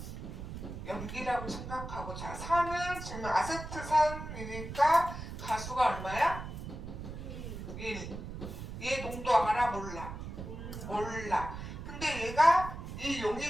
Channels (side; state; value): right; noise; rumble, 8 dB below the sound